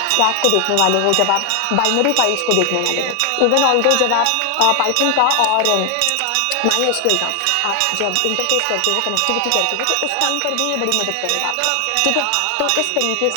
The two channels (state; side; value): different; both; correlation 0.00